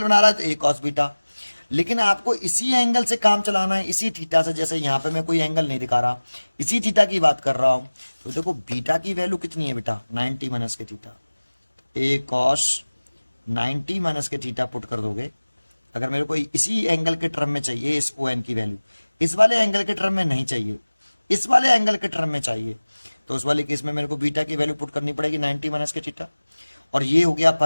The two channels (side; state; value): both; inverted; correlation -1.00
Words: बना रहा है तो ए कॉस बीटा, लेकिन आपको इसी एंगल से काम चलाना है, इसी थीटा से, जैसे यहाँ पे मैं कोई एंगल नहीं दिखा रहा, इसी थीटा की बात कर रहा हूं, तो देखो बीटा की वैल्यू कितनी है बेटा, 90 माइनस के थीटा, ए कॉस 90 माइनस के थीटा पुट कर दोगे, अगर मेरे को इसी एंगल के टर्म में चाहिए इस ओ एन की वैल्यू, इस वाले एंगल के टर्म में नहीं चाहिए, इस वाले एंगल के टर्म में चाहिए, तो उस वाले केस में मेरे को बीटा की वैल्यू पुट करनी पड़ेगी 90 माइनस के थीटा, और ये हो गया